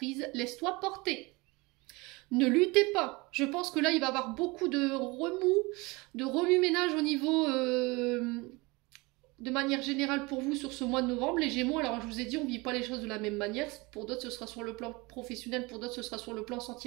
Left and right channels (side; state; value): left; quieter; 24.8 dB